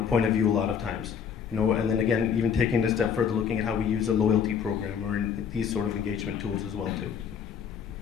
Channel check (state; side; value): quieter; right; 7.3 dB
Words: point of view a lot of times. And then again, even taking it a step further, looking at how we use a loyalty program or these sort of engagement tools as well too.